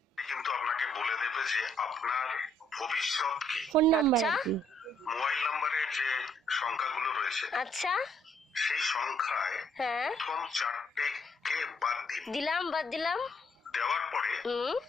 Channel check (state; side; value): normal; both; correlation 0.69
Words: কিন্তু আপনাকে বলে দেবে যে আপনার ভবিষ্যৎ কি। ফোন নাম্বার কি, মোবাইল নাম্বারের যে সংখ্যাগুলো রয়েছে, আচ্ছা সেই সংখ্যায় হ্যাঁ প্রথম 4টে কে বাদ দিন। বাদ দিলাম। দেওয়ার পরে